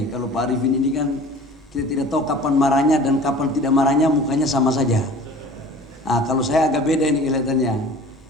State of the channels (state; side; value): normal; both; correlation 0.43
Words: Kalau Pak Arifin ini kan kita tidak tahu kapan marahnya dan kapan tidak marahnya, mukanya sama saja. Kalau saya agak beda ini kelihatannya.